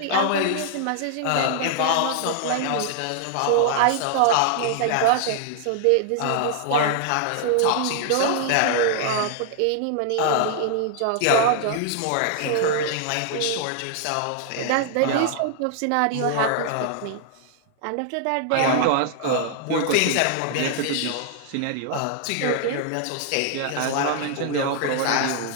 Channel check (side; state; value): both; different; correlation -0.01